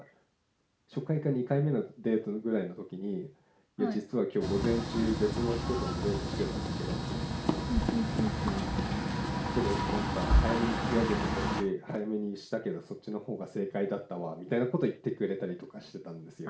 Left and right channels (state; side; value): identical; both; correlation 1.00